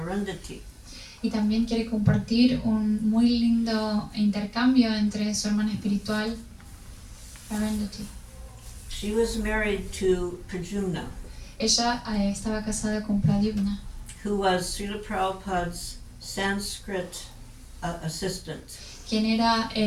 Y también quiere compartir un muy lindo intercambio entre su hermana espiritual, Arundhati. She was married to Pradyumna, Ella estaba casada con Pradyumna, who was Srila Prabhupada's Sanskrit assistant. quien era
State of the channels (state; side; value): identical; both; correlation 1.00